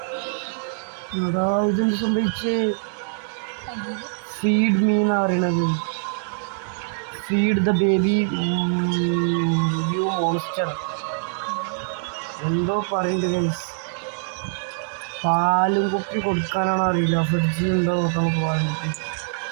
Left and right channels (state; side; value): silent; left; 63 dB below the other